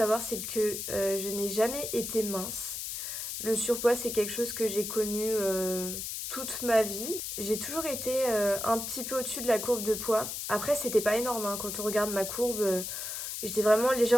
c'est que je n'ai jamais été mince. Le surpoids, c'est quelque chose que j'ai connu toute ma vie. J'ai toujours été un petit peu au-dessus de la courbe de poids. Après, c'était pas énorme, hein. Quand on regarde ma courbe, j'étais vraiment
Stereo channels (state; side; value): noise; left; hiss, 5 dB below the sound